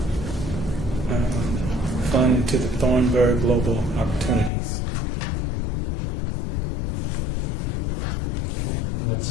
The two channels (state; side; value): drops out; right; at 4.5 s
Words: fund into the Thornburg Global Opportunities.